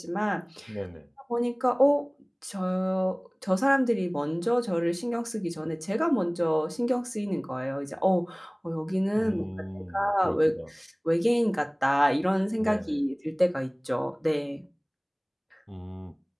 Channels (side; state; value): both; identical; correlation 1.00